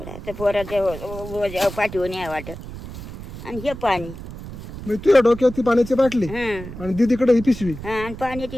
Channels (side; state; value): right; noise; rumble, 12 dB below the sound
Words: आता पोराच्या पाठीवर नाही वाटत. आणि हे पाणी. म्हणजे तुझ्या डोक्यात ती पाण्याची बाटली हां आणि दीदीकडे ही पिशवी. हां, आणि